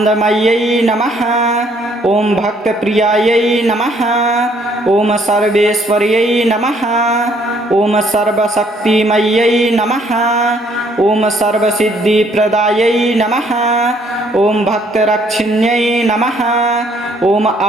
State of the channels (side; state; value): both; normal; correlation 0.65